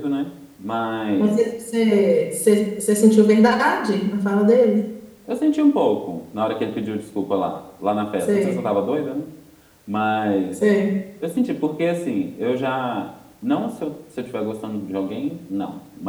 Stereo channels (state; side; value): identical; both; correlation 1.00